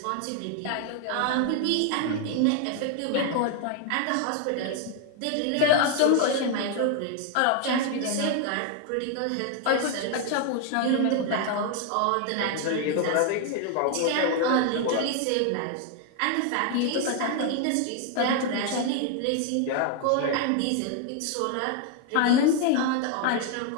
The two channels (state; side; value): different; both; correlation 0.00